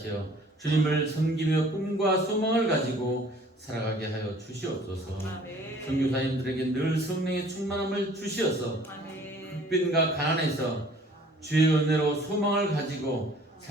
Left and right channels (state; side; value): normal; both; correlation 0.53